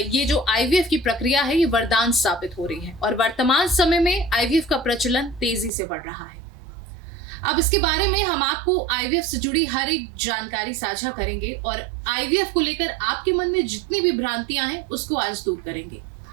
ये जो आईवीएफ की प्रक्रिया है ये वरदान साबित हो रही है और वर्तमान समय में आईवीएफ का प्रचलन तेजी से बढ़ रहा है। अब इसके बारे में हम आपको आईवीएफ से जुड़ी हर एक जानकारी साझा करेंगे और आईवीएफ को लेकर आपके मन में जितनी भी भ्रांतियां हैं उसको आज दूर करेंगे।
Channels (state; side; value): drops out; left; at 5.7 s